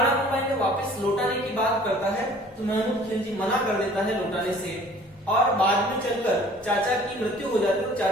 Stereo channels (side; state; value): both; normal; correlation 0.51